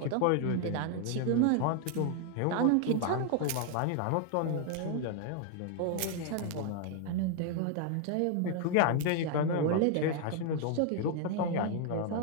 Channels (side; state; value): both; different; correlation 0.00